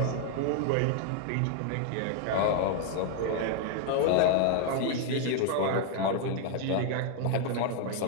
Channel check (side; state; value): both; different; correlation 0.00